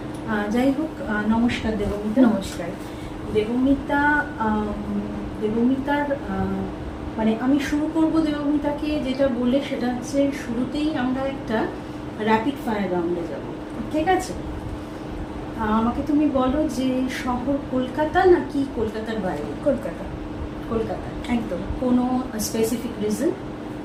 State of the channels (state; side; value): identical; both; correlation 1.00